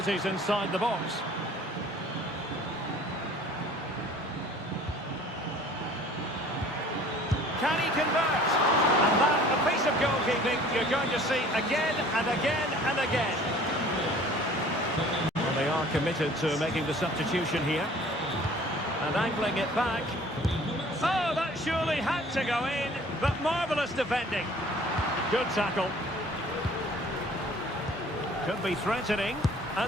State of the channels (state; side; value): normal; both; correlation 0.50